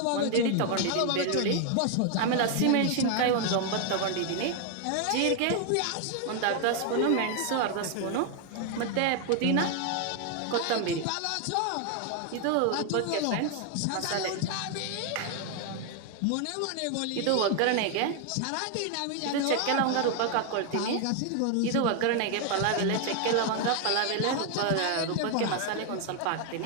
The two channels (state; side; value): different; both; correlation 0.00